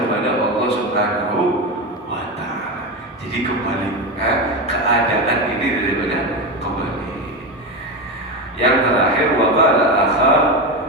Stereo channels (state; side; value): normal; both; correlation 0.17